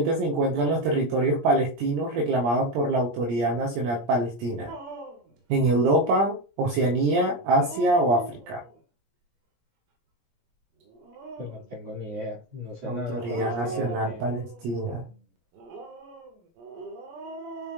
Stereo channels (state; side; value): late; left; 17 ms